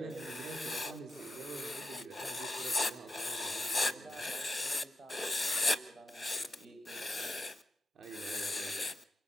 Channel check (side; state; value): both; normal; correlation 0.85